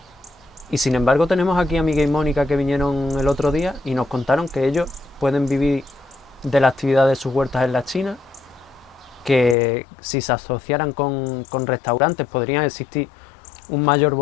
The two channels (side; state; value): right; drops out; at 9.6 s